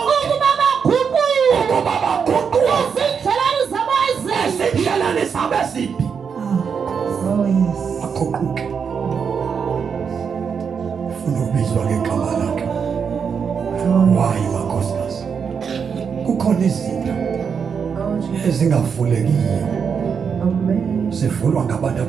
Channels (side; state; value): left; quieter; 6.5 dB